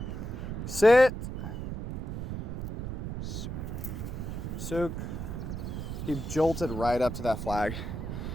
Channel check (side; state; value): right; noise; rumble, 5 dB below the sound